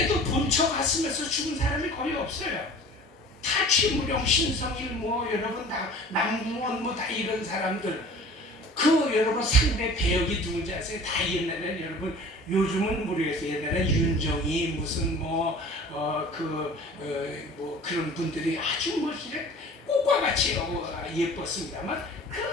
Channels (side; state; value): both; normal; correlation 0.44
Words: 본처 갔으면서 죽은 사람이 거의 없어요. 다 최무룡, 신성일 여러분 다 남궁원 다 이런 사람들 그 여러분 상대 배역이 누군지 아세요? 다 옛날에는 여러분 요즘은 모르겠어요. 옛날에 윤정이 무슨 그런 분들이 아주 꽃과 같이 예뻤습니다만